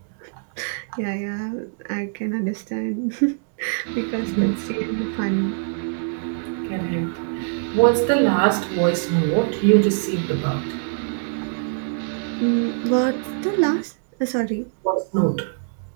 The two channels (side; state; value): left; silent; digital silence